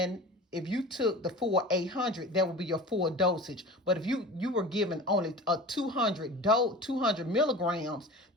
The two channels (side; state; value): both; normal; correlation 0.36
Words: if you took the full 800, that would be your full dosage. But if you were given only a 200 milligrams,